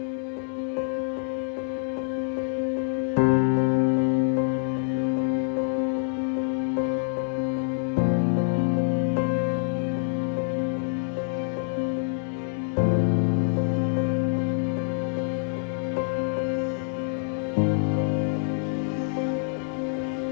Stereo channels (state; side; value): silent; right; digital silence